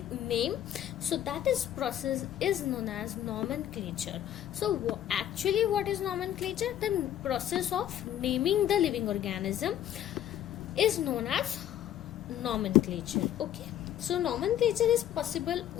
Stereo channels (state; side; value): quieter; right; 11.3 dB